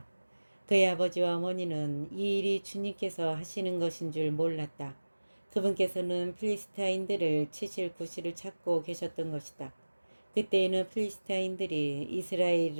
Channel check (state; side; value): inverted; both; correlation -1.00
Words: 그의 아버지와 어머니는 이 일이 주님께서 하시는 것인 줄 몰랐다. 그분께서는 필리스타인들을 치실 구실을 찾고 계셨던 것이다. 그때에는 필리스타인들이